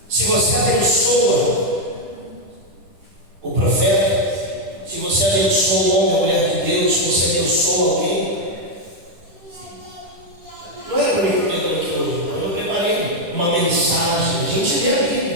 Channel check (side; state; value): left; late; 10 ms